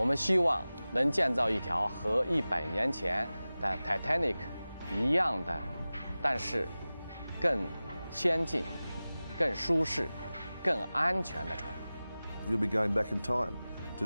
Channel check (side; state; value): both; inverted; correlation -0.97